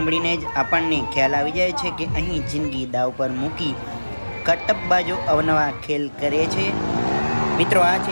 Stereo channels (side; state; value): both; inverted; correlation -1.00